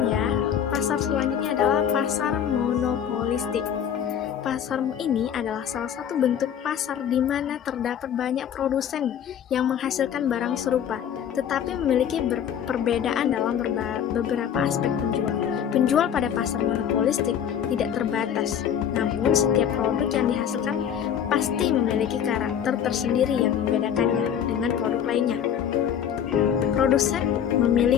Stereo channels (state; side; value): quieter; right; 8.9 dB